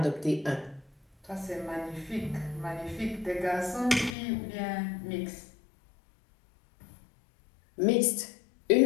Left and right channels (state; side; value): drops out; right; at 4.2 s